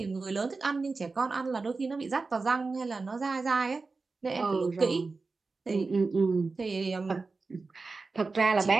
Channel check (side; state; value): left; quieter; 4.0 dB